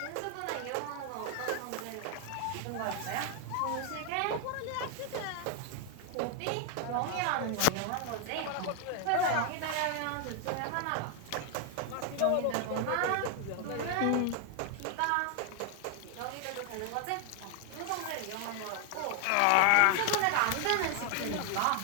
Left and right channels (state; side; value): different; both; correlation 0.00